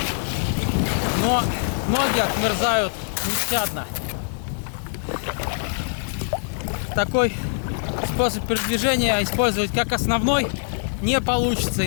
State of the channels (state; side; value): silent; right; digital silence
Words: Но ноги отмерзают нещадно. Такой способ передвижения использовать как основной не получится,